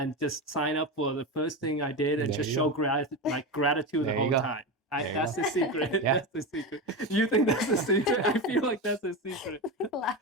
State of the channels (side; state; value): both; normal; correlation 0.19